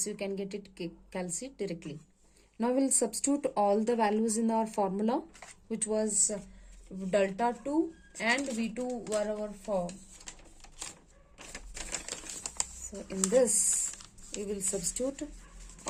you can get it calci directly. Now we'll substitute all the values in our formula, which was delta 2 and V2 were our form. So in this, we will substitute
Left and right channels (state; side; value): identical; both; correlation 1.00